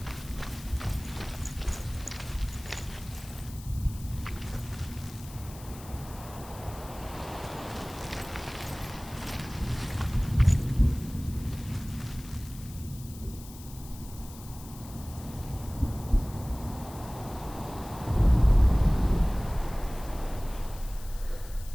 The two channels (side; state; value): left; noise; hiss, 18 dB below the sound